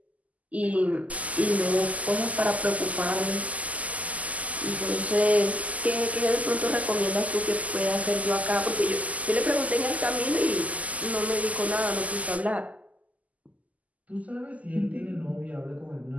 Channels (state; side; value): late; left; 0.073 ms